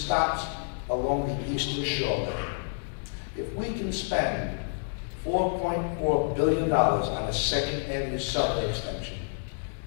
along the Eastern Shore. If we can spend $4.4 billion on a Second Avenue subway extension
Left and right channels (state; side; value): silent; right; digital silence